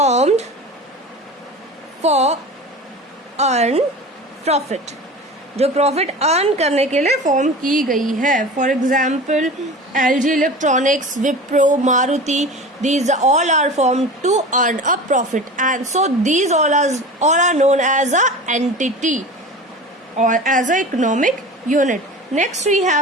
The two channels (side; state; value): both; normal; correlation 0.34